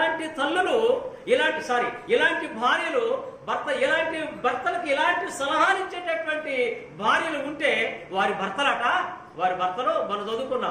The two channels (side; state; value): both; identical; correlation 1.00